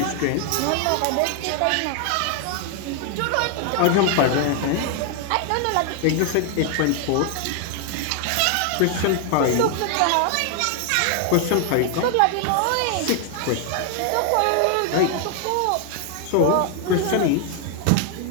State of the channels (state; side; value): different; both; correlation 0.00